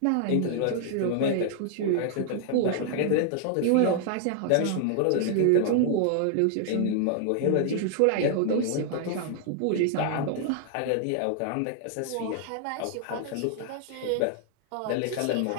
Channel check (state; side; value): different; both; correlation 0.00